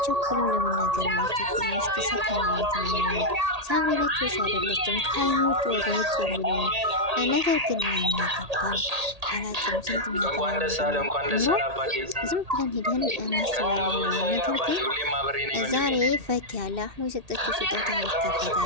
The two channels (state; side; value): late; left; 1.8 ms